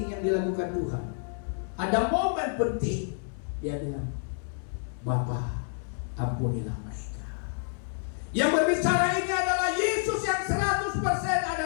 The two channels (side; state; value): right; silent; digital silence